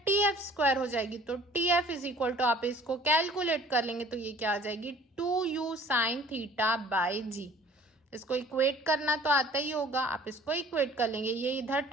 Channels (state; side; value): normal; both; correlation 0.51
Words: tf स्क्वायर हो जाएगी, तो tf इज इक्वल टू, आप इसको कैलकुलेट कर लेंगे तो ये क्या आ जाएगी, 2u sign theta by g। इसको इक्वेट करना तो आता ही होगा, आप इसको इक्वेट कर लेंगे, ये इधर